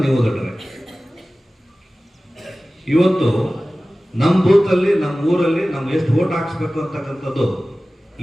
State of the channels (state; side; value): normal; both; correlation 0.97